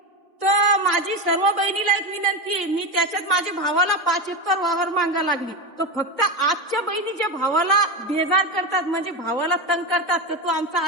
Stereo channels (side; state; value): both; normal; correlation 0.17